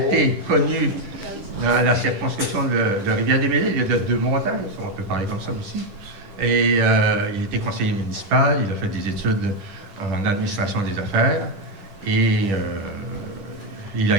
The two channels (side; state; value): left; late; 10 ms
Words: dans la circonscription de Rivière-des-Mêlés. Il y a deux montagnes, on peut parler comme ça aussi. Et il était conseiller municipal, il a fait des études en administration des affaires et il a